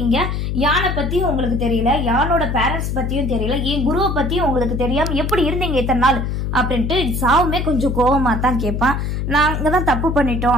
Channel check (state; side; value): noise; left; hum, 2 dB below the sound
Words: யானை பத்தியும் உங்களுக்கு தெரியல, யானோட பேரண்ட்ஸ் பத்தியும் தெரியல, என் குருவை பத்தியும் உங்களுக்கு தெரியாம எப்படி இருந்தீங்க இத்தனை நாள் அப்படின்ட்டு சாவுமே கொஞ்சம் கோபமா தான் கேட்பான். நாங்க தான் தப்பு